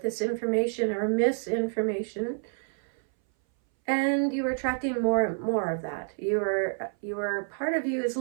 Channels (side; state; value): left; silent; 58 dB below the other